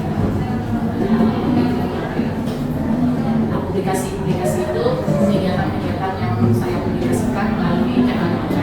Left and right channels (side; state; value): both; identical; correlation 1.00